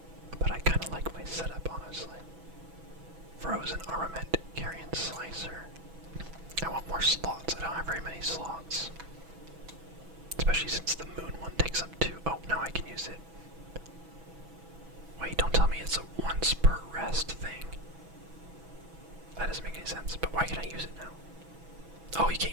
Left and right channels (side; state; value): left; late; 6.1 ms